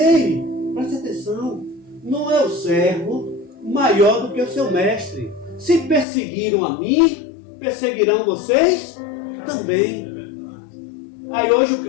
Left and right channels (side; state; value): right; drops out; at 6.1 s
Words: preste atenção, não é o servo maior do que o seu mestre. Se perseguiram a mim, perseguirão vocês também. Aí hoje o